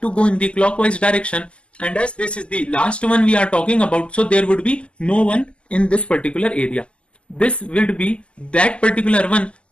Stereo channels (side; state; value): right; late; 0.053 ms